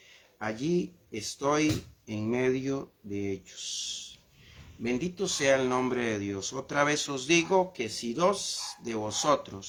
allí estoy en medio de ellos. Bendito sea el nombre de Dios. Otra vez os digo que si dos de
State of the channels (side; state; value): both; identical; correlation 1.00